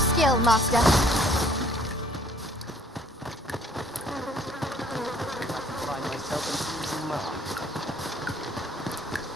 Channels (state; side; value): normal; both; correlation 0.59